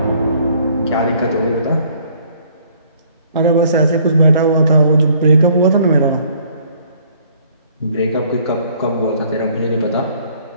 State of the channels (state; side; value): inverted; both; correlation -0.61